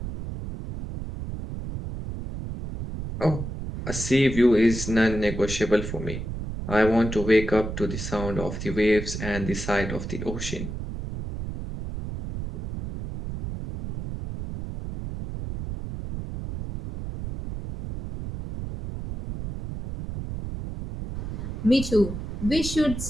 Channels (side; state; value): right; noise; rumble, 7 dB below the sound